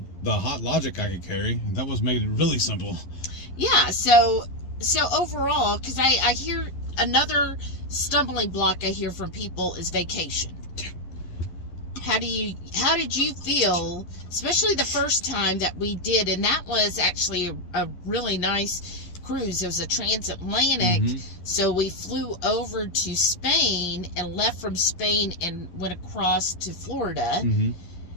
the hot logic I could carry. That was made it really simple. Yeah, so overall, because I hear another stumbling block I hear from people is vacation. How did you feel, especially the first time that we did, and that was actually a really nice cruise. It was a transatlantic, so we flew over to Spain and left from Spain and went across to Florida.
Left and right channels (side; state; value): right; late; 11 ms